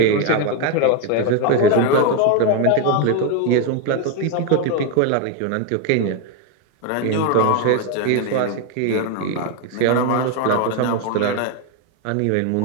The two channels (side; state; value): both; different; correlation 0.01